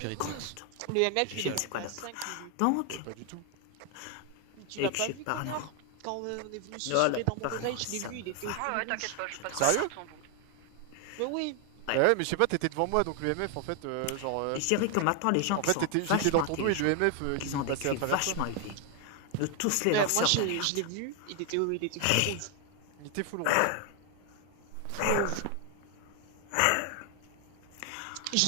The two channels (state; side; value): different; both; correlation 0.00